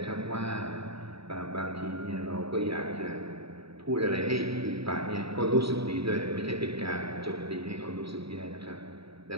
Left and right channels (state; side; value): late; left; 0.76 ms